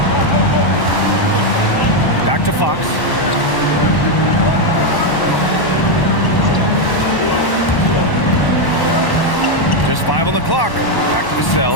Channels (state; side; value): late; right; 1.1 ms